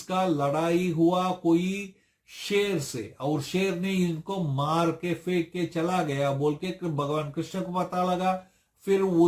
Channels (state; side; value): identical; both; correlation 1.00